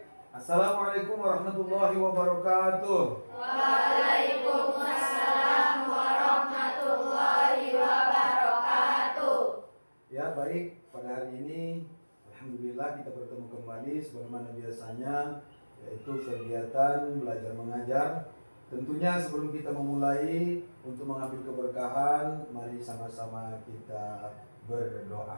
Assalamualaikum warahmatullahi wabarakatuh. Waalaikumsalam warahmatullahi wabarakatuh. Ya, baik. Pada hari ini alhamdulillah kita bertemu kembali sebagaimana biasanya, yaitu kegiatan belajar mengajar. Tentunya sebelum kita memulai untuk mengambil keberkahan, mari sama-sama kita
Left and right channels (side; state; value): both; inverted; correlation -1.00